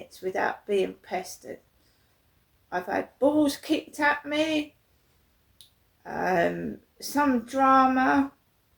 without being pestered. I've had balls kicked at me, some drama,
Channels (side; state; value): both; identical; correlation 1.00